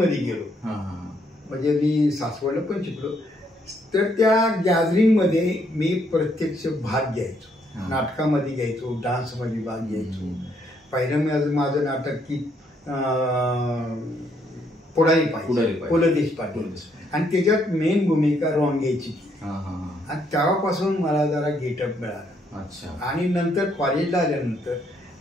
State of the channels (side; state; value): both; normal; correlation 0.71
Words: गेलो, म्हणजे मी सासवडला पण शिकलो, तर त्या गॅदरिंगमध्ये मी प्रत्यक्ष भाग घ्यायचो. नाटकामध्ये घ्यायचो, डान्समध्ये भाग घ्यायचो. पहिलं माझं नाटक की पुढारी पाहिजे, पु ल देशपांडे, आणि त्याच्यात मेन भूमिका रोंग्याची. आणि तेव्हापासून मला जरा गेटअप मिळाला. आणि नंतर कॉलेजला आल्यानंतर